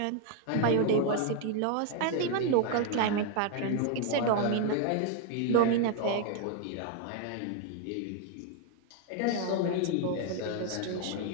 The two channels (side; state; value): both; different; correlation 0.00